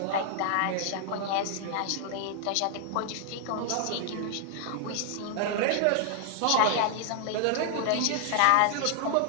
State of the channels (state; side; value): different; both; correlation 0.00